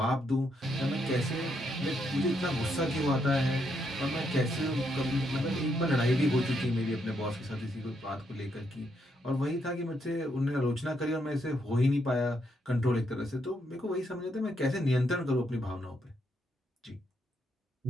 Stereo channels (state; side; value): normal; both; correlation 0.77